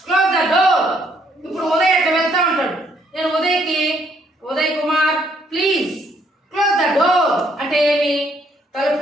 the door. ఇప్పుడు ఉదయ్ అట్లా వెళ్తా ఉంటాడు. నేను Uday Kumar please close the door అంటే ఏమి?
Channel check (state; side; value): normal; both; correlation 0.69